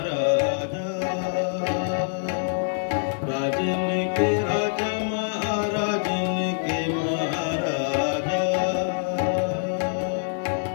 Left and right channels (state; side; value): silent; right; 62 dB below the other